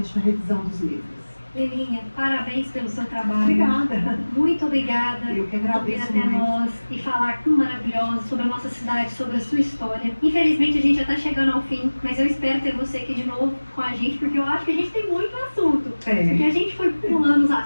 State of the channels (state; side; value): inverted; both; correlation -1.00